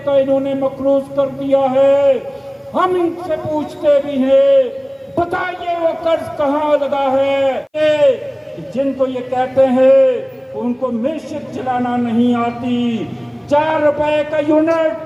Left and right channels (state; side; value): identical; both; correlation 1.00